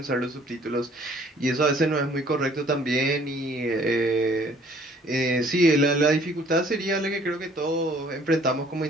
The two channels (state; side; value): normal; both; correlation 0.58